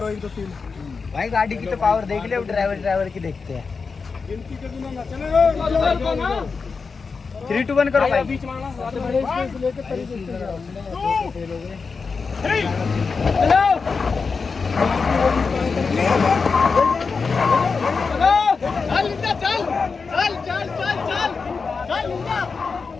एक दो तीन। भाई गाड़ी की तो पावर देख ले, अब ड्राइवर की देखते हैं। गिनती के बिना ना चलेगा, 3 2 1 करो भाई। बीच में लेके तरीके से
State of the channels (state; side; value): quieter; right; 4.9 dB